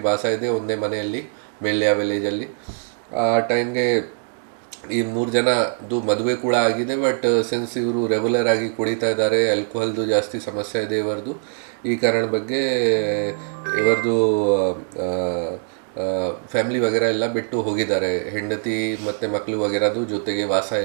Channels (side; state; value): left; silent; digital silence